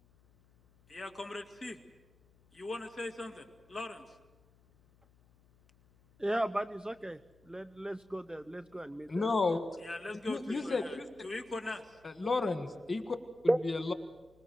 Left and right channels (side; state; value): left; noise; hum, 30 dB below the sound